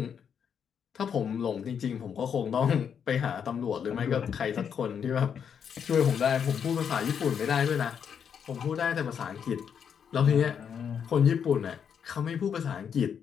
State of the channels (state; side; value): quieter; right; 7.6 dB